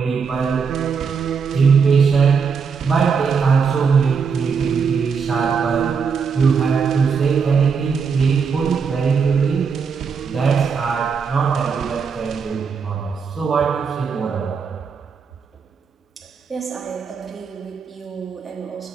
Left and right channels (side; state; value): left; quieter; 5.9 dB